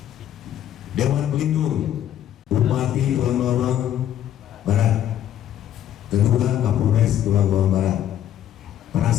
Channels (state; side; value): quieter; right; 11.1 dB